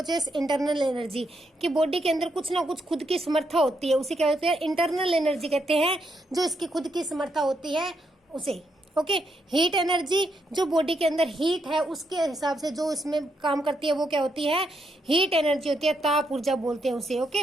internal energy, कि बॉडी के अंदर कुछ ना कुछ खुद की समर्था होती है, उसे क्या होती है, इंटरनल एनर्जी कहते हैं। जो इसकी खुद की समर्था होती है उसे। ओके, हीट एनर्जी, जो बॉडी के अंदर हीट है उसके हिसाब से जो इसमें काम करती है वो क्या होती है, हीट एनर्जी होती है, ताप ऊर्जा बोलते हैं उसे। ओके,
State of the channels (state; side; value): normal; both; correlation 0.79